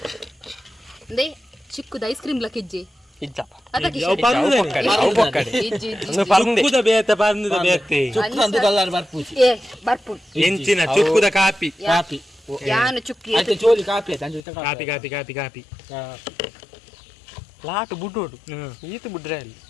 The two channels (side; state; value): right; drops out; at 14.5 s